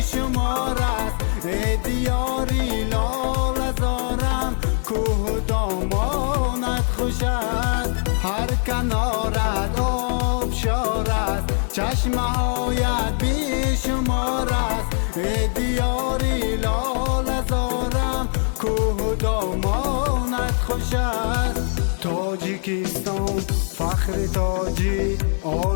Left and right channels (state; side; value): silent; right; digital silence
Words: است. ای دیاری لال زارم کوه دامانت خوش است. هر کنارت آبشار است، چشمه هایت بیشمار است. ای دیاری لال زارم کوه دامانت خوش است. تاجیکستان فخر تاجی